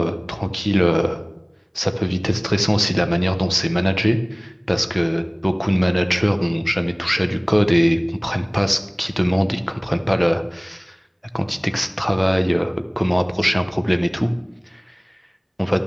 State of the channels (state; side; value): identical; both; correlation 1.00